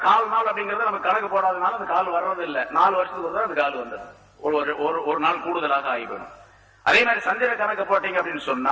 கால் நாள் அப்படிங்கறது நம்ம கணக்கு போடாதனால அந்த கால் வர்றது இல்ல. 4 வருஷத்துக்கு ஒரு அந்த கால் வந்துடும். ஒரு நாள் கூடுதலாக ஆகி போயிடும். அதே மாதிரி சந்திர கணக்கு போட்டீங்க அப்படின்னு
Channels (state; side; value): identical; both; correlation 1.00